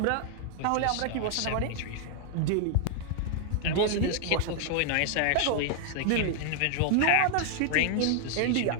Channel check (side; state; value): both; different; correlation 0.00